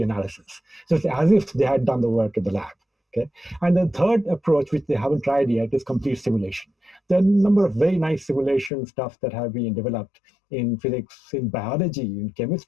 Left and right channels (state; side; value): drops out; right; at 8.7 s